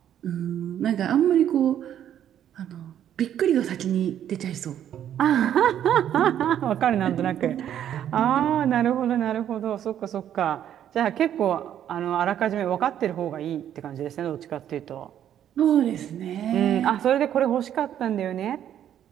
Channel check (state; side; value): quieter; left; 10.4 dB